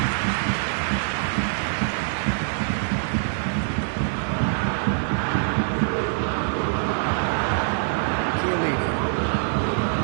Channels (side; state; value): left; silent; 62 dB below the other